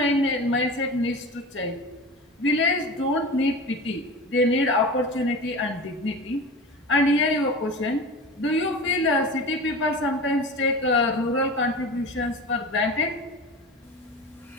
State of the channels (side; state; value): both; normal; correlation 0.31